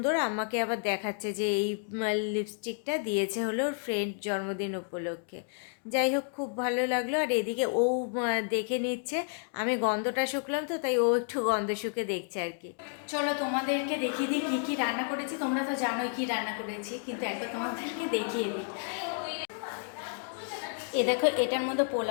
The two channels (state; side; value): silent; right; 57 dB below the other